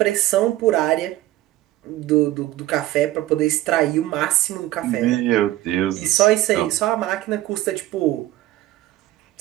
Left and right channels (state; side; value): quieter; left; 15.7 dB